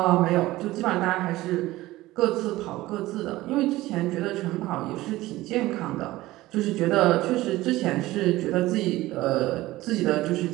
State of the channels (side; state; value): left; quieter; 17.6 dB